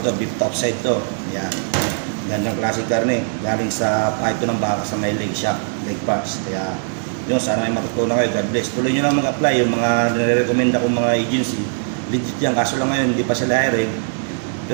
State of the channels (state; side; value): silent; left; digital silence